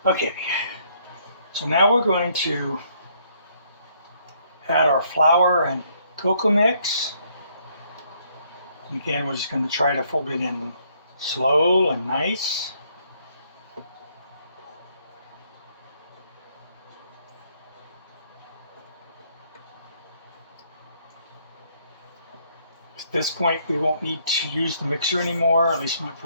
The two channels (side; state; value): both; inverted; correlation -0.69